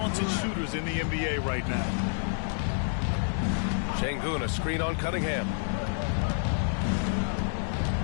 shooters in the NBA right now. Şengün, a screen on Cunningham.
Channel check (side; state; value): right; silent; digital silence